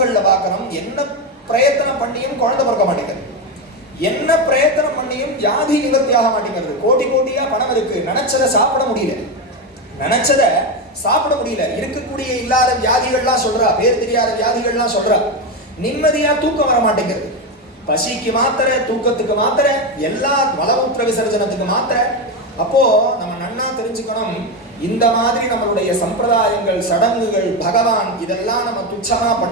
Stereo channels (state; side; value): normal; both; correlation 0.13